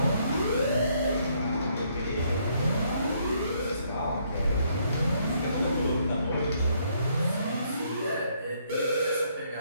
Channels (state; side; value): inverted; both; correlation -0.70